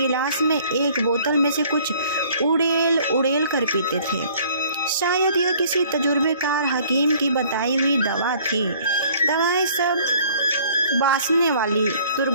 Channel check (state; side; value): inverted; both; correlation -0.56